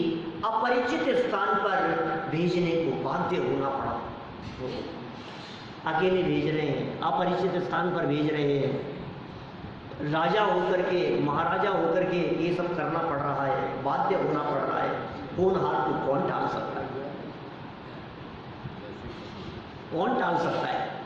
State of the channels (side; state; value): both; identical; correlation 1.00